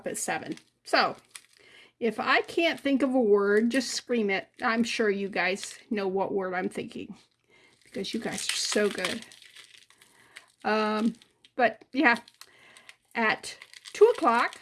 at 7. So if I can't think of a word, just scream it. I'm sure you guys know what word I'm thinking because you guys are so good. But yeah, at 2 o'clock,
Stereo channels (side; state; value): both; identical; correlation 1.00